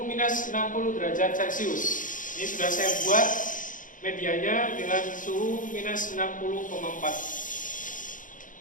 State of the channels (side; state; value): right; late; 0.38 ms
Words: minus 60 derajat Celcius. Ini sudah saya buat medianya dengan suhu minus